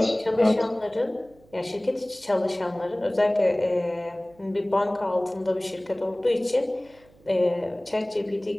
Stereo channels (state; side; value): noise; right; hum, 28 dB below the sound